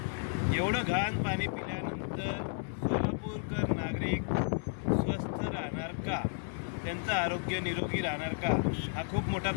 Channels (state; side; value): silent; right; digital silence